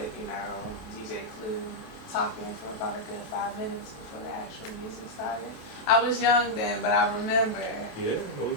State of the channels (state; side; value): late; right; 27 ms